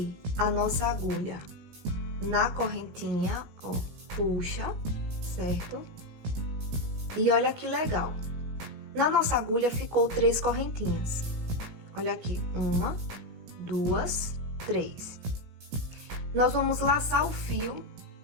a nossa agulha na correntinha, ó, puxa, certo? E olha que legal. Na nossa agulha ficou 3 correntinhas. Olha aqui, 1, 2, 3. Nós vamos laçar o fio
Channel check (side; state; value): left; late; 17 ms